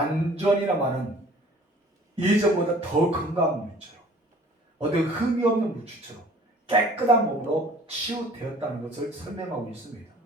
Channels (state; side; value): normal; both; correlation 0.51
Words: 말은 예전보다 더 건강한 물처럼, 어떤 흠이 없는 물처럼 깨끗한 몸으로 치유되었다는 것을 설명하고 있습니다.